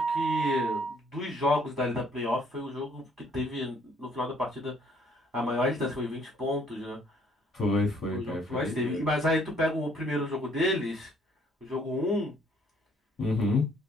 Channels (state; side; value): normal; both; correlation 0.63